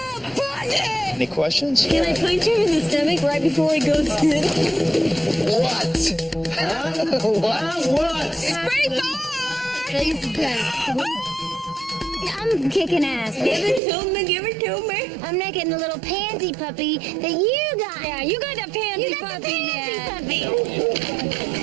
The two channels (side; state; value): left; drops out; at 13.8 s